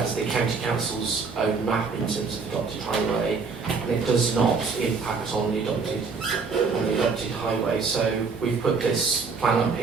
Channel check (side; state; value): left; quieter; 4.9 dB